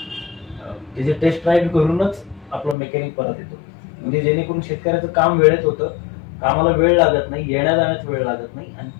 त्याचे टेस्ट राईड करूनच आपला मेकॅनिक परत येतो, म्हणजे जेणेकरून शेतकऱ्याचं काम वेळेत होतं, कामाला वेळ लागत नाही, येण्या जाण्यात वेळ लागत नाही, आणि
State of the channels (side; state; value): right; drops out; at 2.8 s